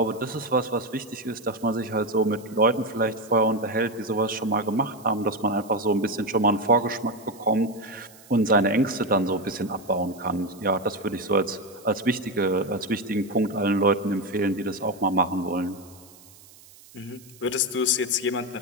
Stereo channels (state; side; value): noise; right; hiss, 23 dB below the sound